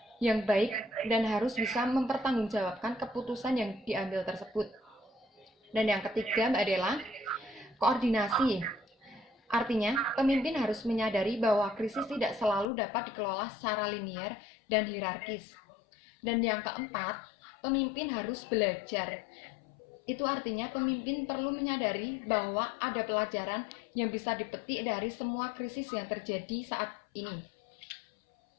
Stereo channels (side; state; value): right; drops out; at 12.7 s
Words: yang baik dan harus bisa mempertanggungjawabkan keputusan yang diambil tersebut. Dan yang ketiga, Mbak Dela, koordinasi. Artinya, pemimpin harus menyadari bahwa krisis tidak selalu dapat dikelola secara linear dan hierarkis. Dan yang keempat, pemimpin harus belajar. Itu artinya pemimpin perlu menyadari bahwa ada pelajaran yang bisa dipetik dari semua krisis yang terjadi saat ini.